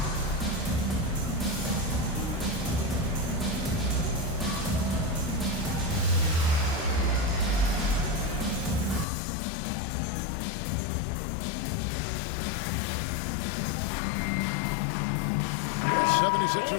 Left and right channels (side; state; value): right; drops out; at 9.1 s